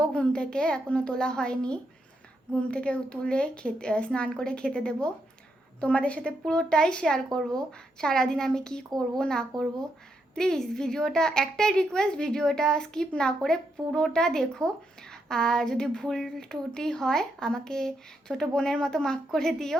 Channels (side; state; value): both; normal; correlation 0.80